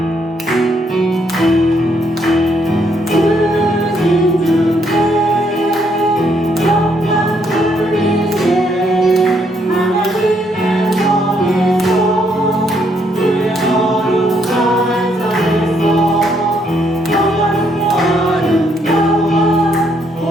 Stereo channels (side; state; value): both; normal; correlation 0.72